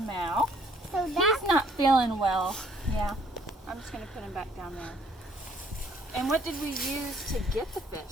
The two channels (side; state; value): both; normal; correlation 0.62